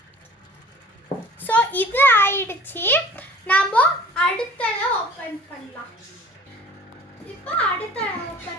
ஸோ இது ஆயிடுச்சு. நாம அடுத்ததை ஓபன் பண்ணலாம். இப்போ அடுத்த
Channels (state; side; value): normal; both; correlation 0.47